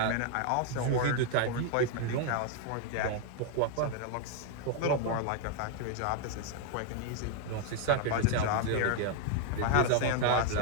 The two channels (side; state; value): both; different; correlation 0.00